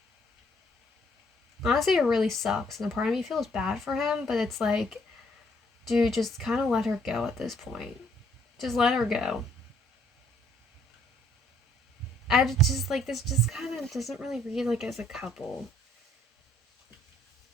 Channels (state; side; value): normal; both; correlation 0.65